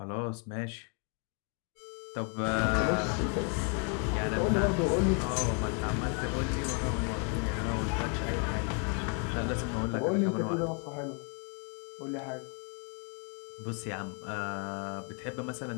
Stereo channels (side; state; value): right; quieter; 38.5 dB